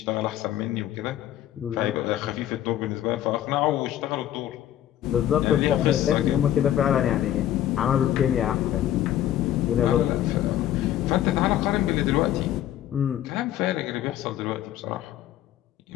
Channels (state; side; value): quieter; right; 12.2 dB